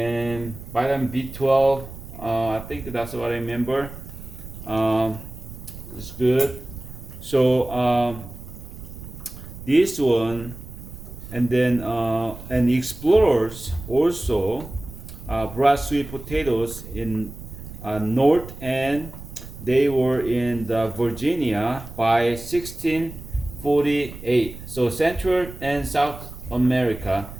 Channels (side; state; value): right; noise; rumble, 13 dB below the sound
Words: vitamin B12. I think that's what I remember. Um, it's good. So this one, and then and explorers also brought sweet potatoes in north, and they were in the Virginia by 1648. So Central and South America